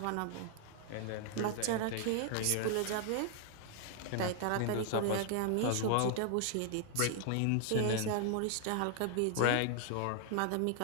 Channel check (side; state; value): both; different; correlation 0.00